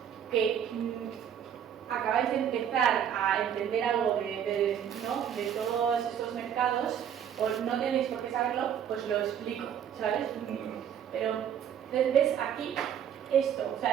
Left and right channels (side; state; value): left; quieter; 9.0 dB